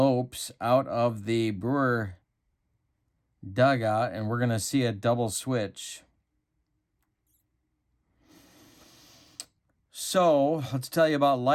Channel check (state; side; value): identical; both; correlation 1.00